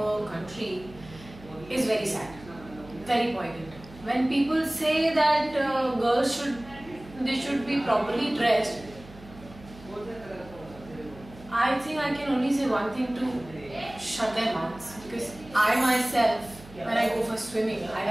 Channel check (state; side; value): noise; right; hum, 19 dB below the sound